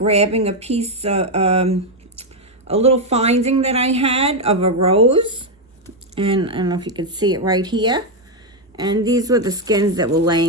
a piece, a little finding that I had of a rose. And I don't know if you can see it right here. And these were the skins that were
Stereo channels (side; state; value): both; normal; correlation 0.03